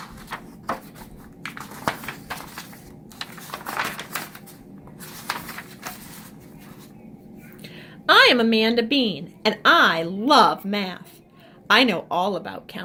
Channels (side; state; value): both; identical; correlation 1.00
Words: I am Amanda Bean, and I love math. I know all about